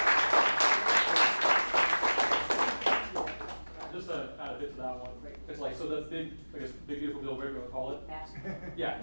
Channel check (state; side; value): inverted; both; correlation -1.00